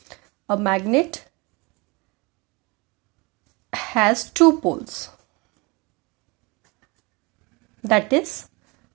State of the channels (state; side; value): quieter; left; 26.9 dB